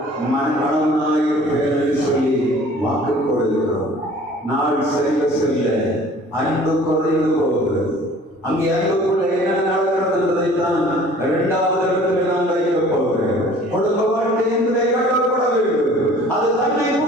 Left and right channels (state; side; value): normal; both; correlation 0.50